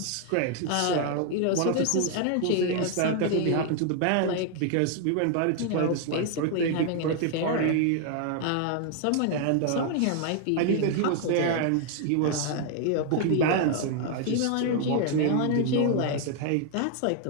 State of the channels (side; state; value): both; different; correlation 0.00